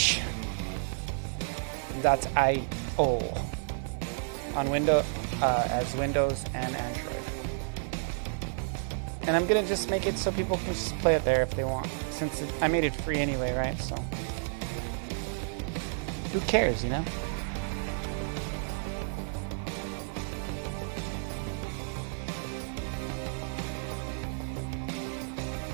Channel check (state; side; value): silent; left; 57 dB below the other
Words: on Windows as Windows and Android. And I'm gonna just make it so people can just play it there if they want, since I made it free anyway, right? So who cares, you know?